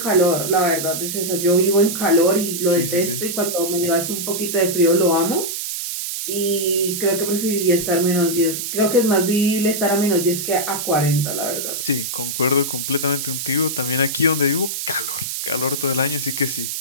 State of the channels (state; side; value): noise; right; hiss, 4 dB below the sound